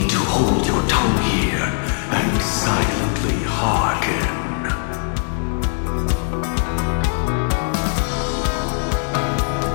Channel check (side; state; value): right; silent; 60 dB below the other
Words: to hold your tongue here and silently hearken.